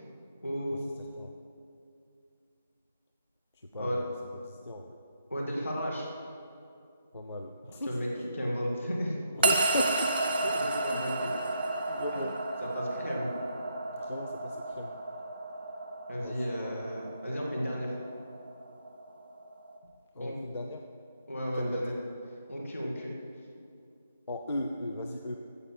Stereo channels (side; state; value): both; inverted; correlation -0.78